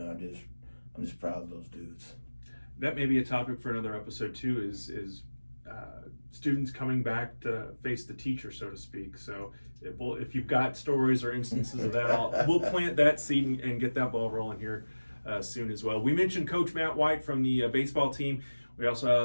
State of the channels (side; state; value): both; inverted; correlation -1.00